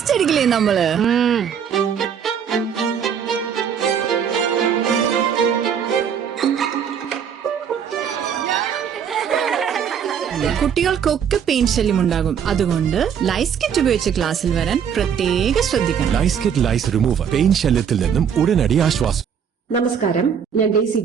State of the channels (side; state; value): left; quieter; 7.8 dB